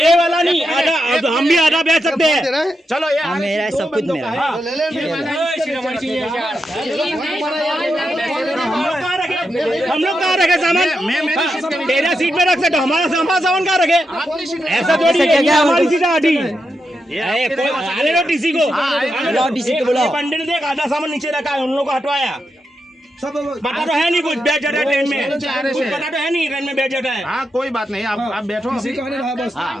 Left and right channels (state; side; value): normal; both; correlation 0.86